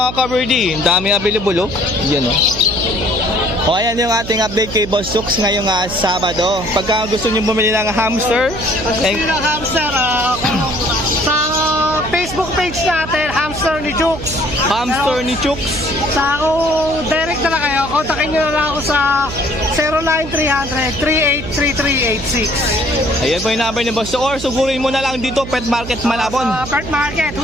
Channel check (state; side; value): noise; right; hum, 10 dB below the sound